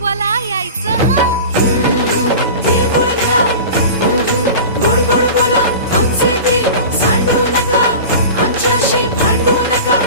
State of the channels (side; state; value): both; inverted; correlation -0.34